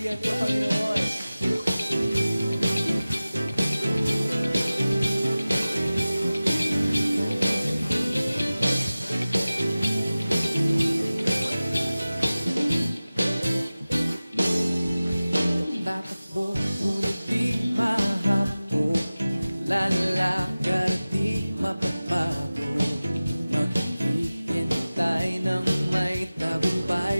ko, Panginoon. Tatakbo, ngunit di mahapo. Lalakad at di mapapago. Maghihintay ng may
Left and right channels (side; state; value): both; inverted; correlation -0.97